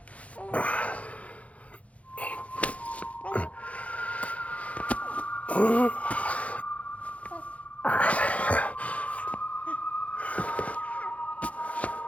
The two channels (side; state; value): right; late; 0.065 ms